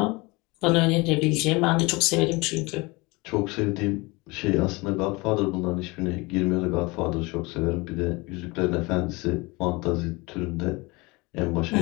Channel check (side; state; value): right; quieter; 24.8 dB